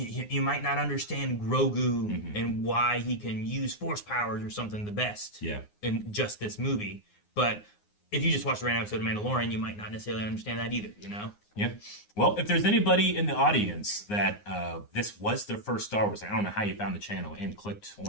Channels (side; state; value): right; late; 9.6 ms